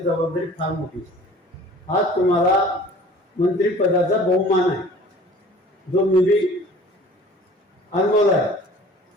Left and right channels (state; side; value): normal; both; correlation 0.47